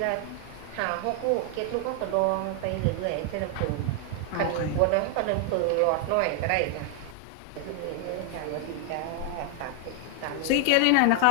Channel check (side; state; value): both; different; correlation 0.00